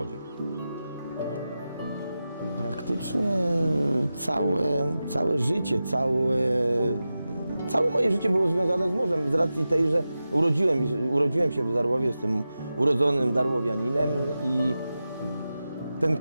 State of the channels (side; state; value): both; inverted; correlation -0.93